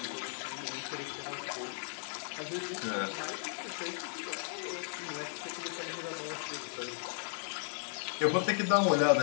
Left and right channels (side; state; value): right; silent; 54 dB below the other